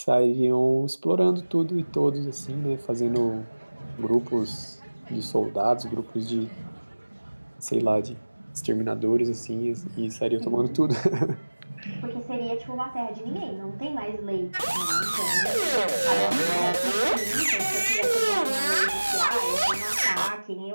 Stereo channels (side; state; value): both; inverted; correlation -1.00